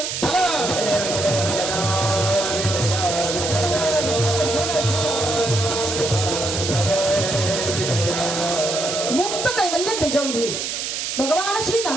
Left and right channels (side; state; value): right; noise; hiss, 3 dB below the sound